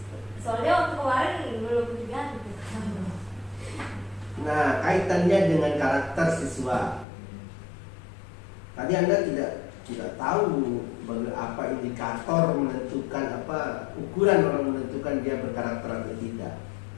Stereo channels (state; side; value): drops out; right; at 7.1 s